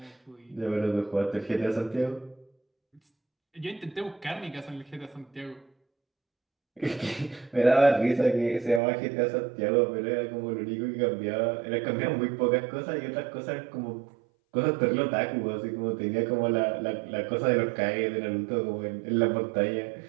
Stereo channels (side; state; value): left; drops out; at 8.8 s